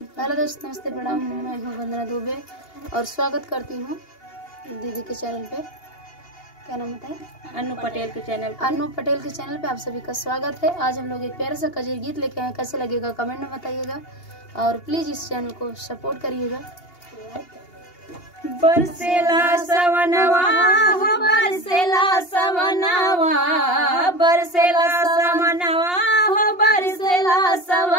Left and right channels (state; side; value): late; right; 2.8 ms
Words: Hello दोस्तों, नमस्ते, प्रणाम। मैं हूँ वंदना दुबे और स्वागत करती हूँ दीदी के चैनल पे। क्या नाम बताएं? अनु पटेल के चैनल पे। अनु पटेल के चैनल पे आप सभी का स्वागत है। आज हम लोग एक प्यारा सा कजरी गीत लेके आए। कैसे लगेगा कमेंट में बताइएगा और प्लीज इस चैनल को सपोर्ट करिएगा। बरसेला सवनवा हो, बरसेला सवनवा, बरसेला सवनवा हो, बरसेला